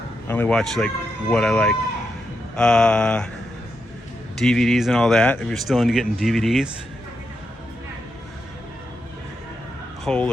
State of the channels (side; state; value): both; normal; correlation 0.84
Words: I only watch like what I like. DVDs and all that, if you're still into getting DVDs. Whole